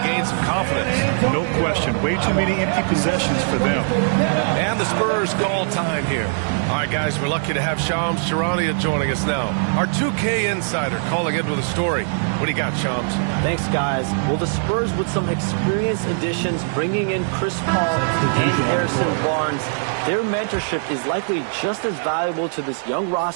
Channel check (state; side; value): silent; left; digital silence